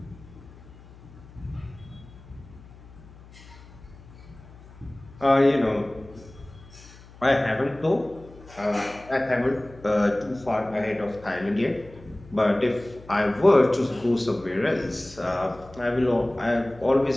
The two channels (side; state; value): left; noise; hum, 21 dB below the sound